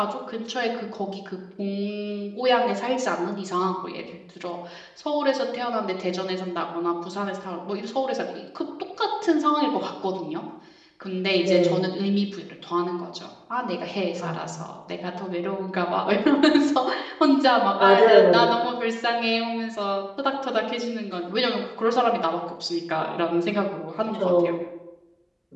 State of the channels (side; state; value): both; identical; correlation 1.00